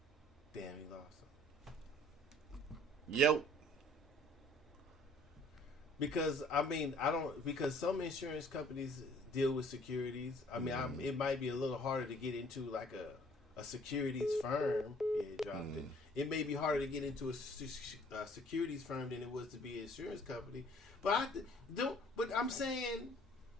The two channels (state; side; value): normal; both; correlation 0.57